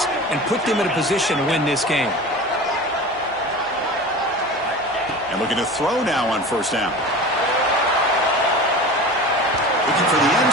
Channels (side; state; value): right; noise; hum, 30 dB below the sound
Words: and put them in a position to win this game. And looking to throw now on 1st down. Looking for the end